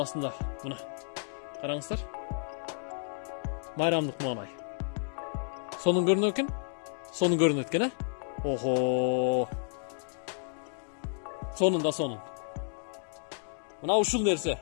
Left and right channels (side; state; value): right; silent; digital silence